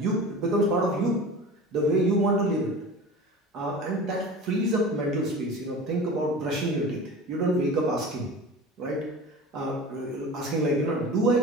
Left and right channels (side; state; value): both; normal; correlation 0.35